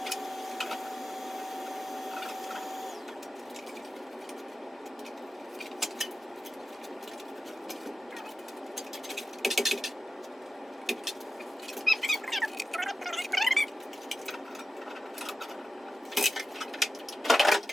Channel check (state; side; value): normal; both; correlation 0.93